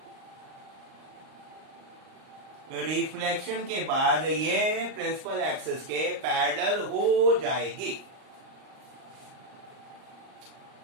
Reflection के बाद ये प्रिंसिपल एक्सिस के पैरेलल हो जाएगी।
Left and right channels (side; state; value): left; late; 38 ms